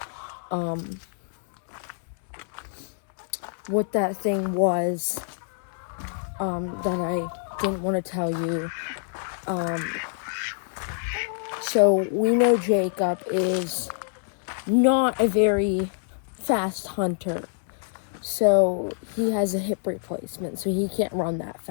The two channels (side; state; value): right; silent; digital silence